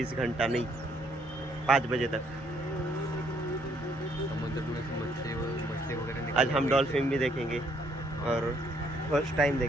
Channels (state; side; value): normal; both; correlation 0.68